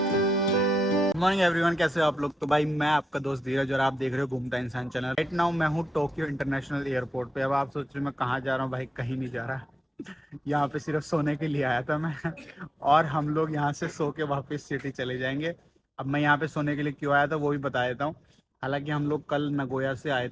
Morning everyone, कैसे हो आप लोग। तो भाई मैं आपका दोस्त धीरज और आप देख रहे हो घूमता इंसान चैनल। राइट नाउ मैं हूँ टोक्यो इंटरनेशनल एयरपोर्ट पे। अब आप सोच रहे हो मैं कहाँ जा रहा हूँ, भाई कहीं नहीं जा रहा। यहाँ पे सिर्फ सोने के लिए आया था मैं और हम लोग यहाँ से सो के वापस सिटी चले जाएंगे। अब मैं यहाँ पे सोने के लिए क्यों आया था वो भी बता देता हूँ। हालांकि हम लोग कल नगोया से आए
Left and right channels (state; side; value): normal; both; correlation 0.89